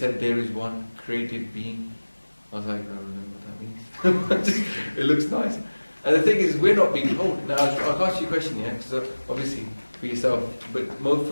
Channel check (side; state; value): both; inverted; correlation -1.00